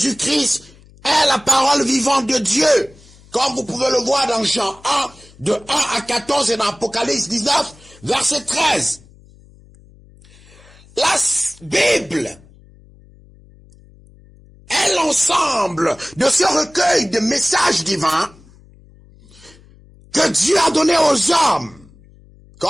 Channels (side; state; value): left; noise; hum, 26 dB below the sound